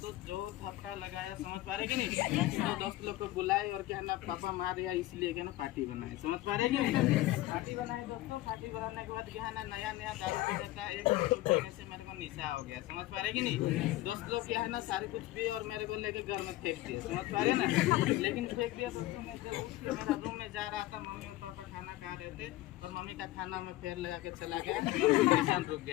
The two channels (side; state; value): right; quieter; 16.9 dB